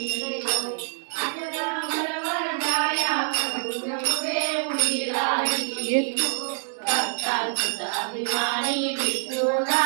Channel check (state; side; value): silent; left; digital silence